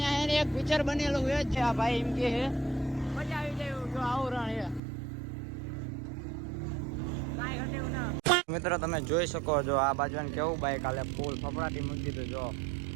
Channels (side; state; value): left; drops out; at 4.8 s